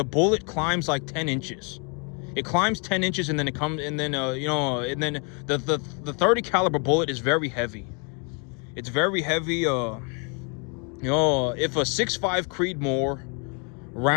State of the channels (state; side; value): quieter; right; 35.9 dB